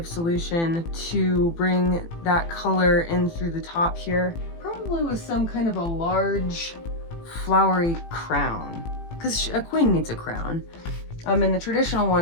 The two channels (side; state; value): right; late; 18 ms